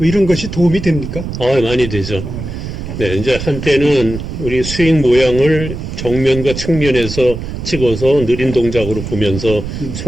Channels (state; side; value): noise; right; rumble, 7 dB below the sound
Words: 이런 것이 도움이 됩니까? 많이 되죠. 네. 네, 이제 한때는 우리 스윙 모양을 정면과 측면에서 찍어서 느린 동작으로 보면서